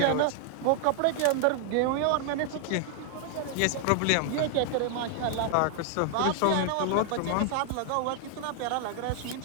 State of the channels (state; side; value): different; both; correlation 0.00